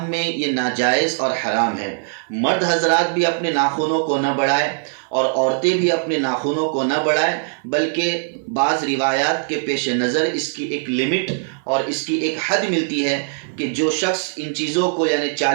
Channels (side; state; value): left; silent; 58 dB below the other